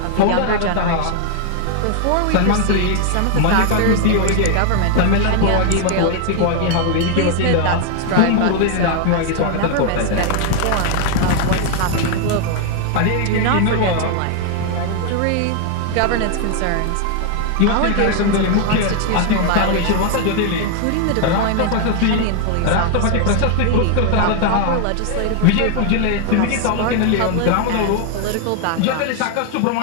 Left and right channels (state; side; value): different; both; correlation 0.00